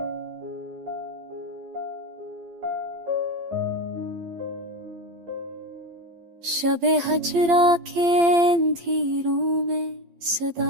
शबे हजरा के अंधेरों में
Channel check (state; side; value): late; left; 12 ms